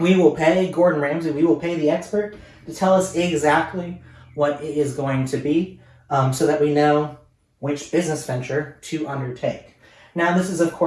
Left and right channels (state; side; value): identical; both; correlation 1.00